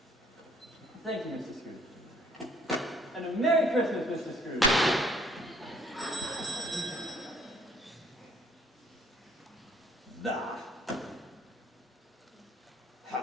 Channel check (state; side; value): normal; both; correlation 0.60